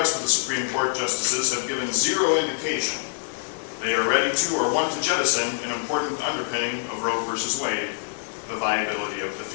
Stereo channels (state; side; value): silent; right; 62 dB below the other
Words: of the Supreme Court justices, have given zero indication they are ready to or want to jettison an important underpinning of Roe v. Wade, the viability of the